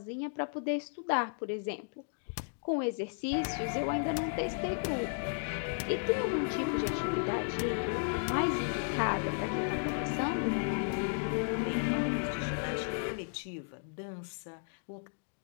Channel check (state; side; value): silent; right; digital silence